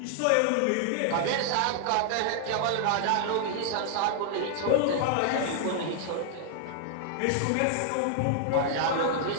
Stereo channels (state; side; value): different; both; correlation -0.01